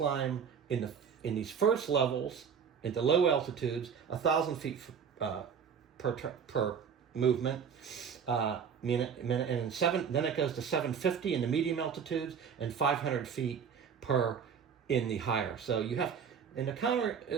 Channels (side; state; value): left; quieter; 7.0 dB